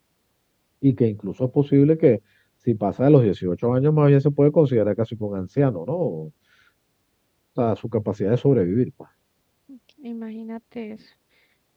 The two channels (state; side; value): identical; both; correlation 1.00